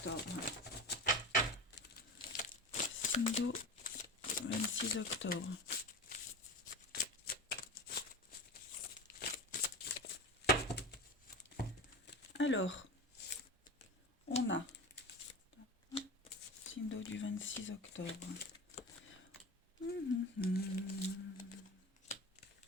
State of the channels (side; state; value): both; normal; correlation 0.28